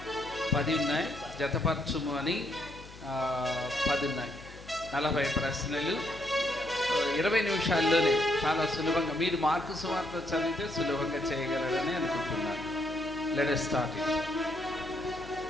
10 ఉన్నాయి. జతపరచుము అని 10 ఉన్నాయి. 40 ప్రశ్నలు 20 నిమిషాల్లోనే చాలా సులభంగా. మీరు మార్కు సువార్త చదివితే సులభంగా చేయగలరని అనుకుంటున్నాను. Let us start it.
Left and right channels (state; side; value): normal; both; correlation 0.74